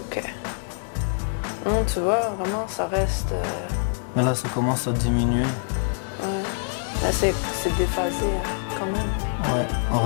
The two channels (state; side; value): silent; right; digital silence